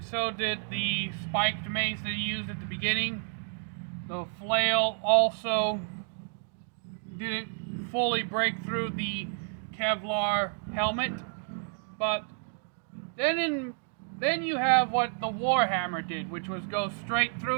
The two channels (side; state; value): left; silent; 58 dB below the other